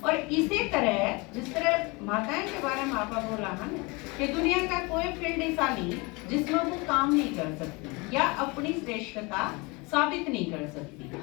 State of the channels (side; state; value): right; quieter; 26.9 dB